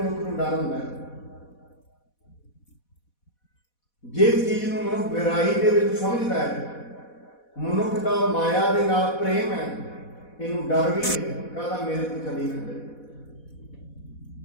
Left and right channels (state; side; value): late; right; 4.1 ms